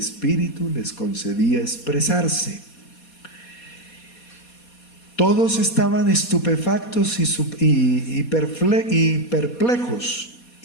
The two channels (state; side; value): late; right; 4.2 ms